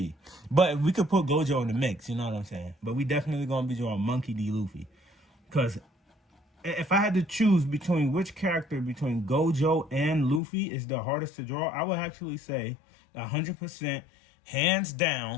But we could put Gojo in the mix, you know what I'm saying? But we definitely gonna be drawing Monkey D. Luffy. Because if I had to choose between which character between Gojo and Luffy is the hardest to draw, I would actually say 100%, hands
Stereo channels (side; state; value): right; drops out; at 10.4 s